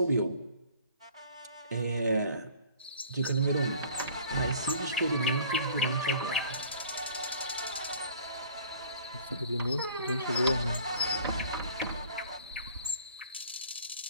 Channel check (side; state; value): both; inverted; correlation -0.50